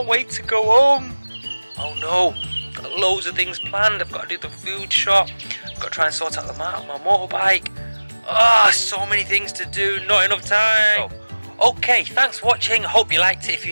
wait to go home. Oh no, I've got loads of things planned. I've got to do the food shop. I've got to try and sort out my motorbike. So many things to do, not enough time. Okay, thanks for watching. I hope you liked it. If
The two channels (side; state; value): both; inverted; correlation -1.00